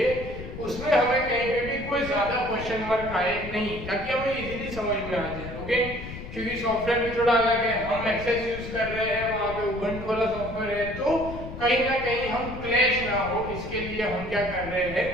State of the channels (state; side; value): noise; left; rumble, 10 dB below the sound